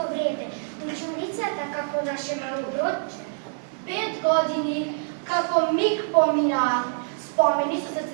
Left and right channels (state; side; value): silent; left; 61 dB below the other